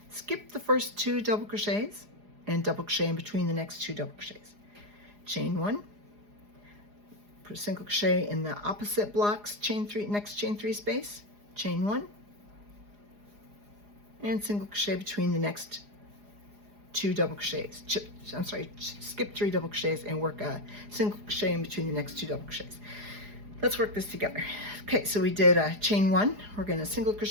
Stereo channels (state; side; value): late; left; 4.8 ms